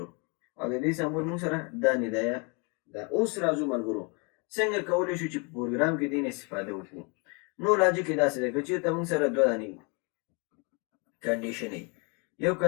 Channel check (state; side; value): quieter; right; 31.9 dB